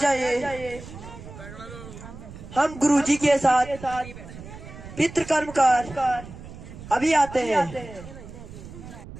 जाइए। हम गुरुजी के साथ पितृकर्म कर अभी आते हैं।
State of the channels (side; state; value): right; noise; rumble, 15 dB below the sound